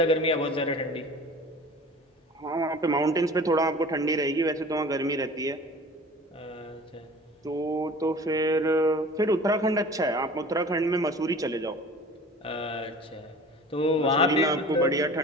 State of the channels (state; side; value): normal; both; correlation 0.43